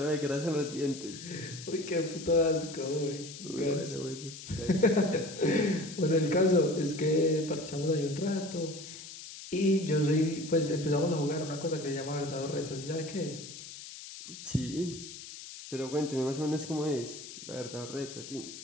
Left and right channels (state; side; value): noise; left; hiss, 13 dB below the sound